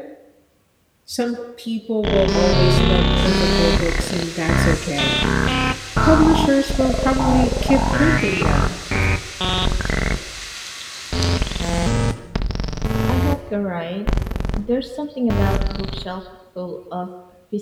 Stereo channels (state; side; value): identical; both; correlation 1.00